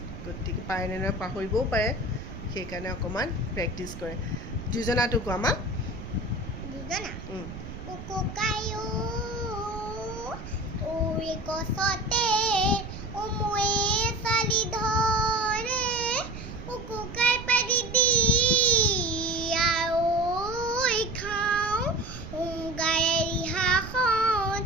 গতিকে পাৰে নে নহয় পাহৰিবও পাৰে, সেইকাৰণে অকমান প্ৰেক্টিছ কৰে। যোজনাটো কোৱা মা। গছতে উমুৱে চালি ধৰে উকুকাই পাৰি দি আই খাওঁ গাৰে ৰিহাখন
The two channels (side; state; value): right; noise; rumble, 11 dB below the sound